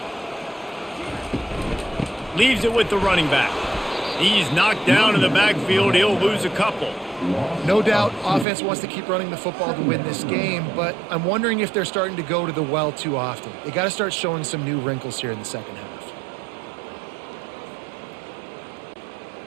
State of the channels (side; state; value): left; drops out; at 8.5 s